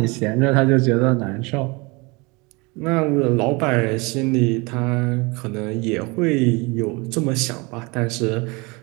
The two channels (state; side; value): quieter; left; 27.0 dB